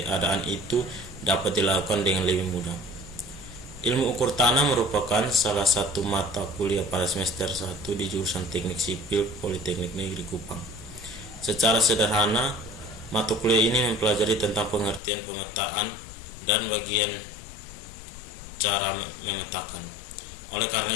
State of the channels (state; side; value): drops out; right; at 15.0 s